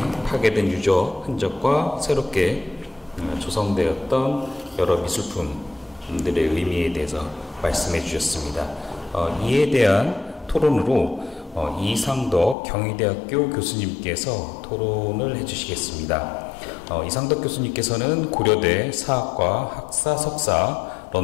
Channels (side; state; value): right; drops out; at 12.6 s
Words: 파괴된 유적, 흔적과 새롭게 조성되었던 여러 미술품들의 의미에 대해서 말씀해 주셨습니다. 이에 대한 토론으로 이상덕 경희대학교 교수님께서 토론을 해주시겠습니다. 이상덕 교수님께서는 고려대 사학과 학사 석사,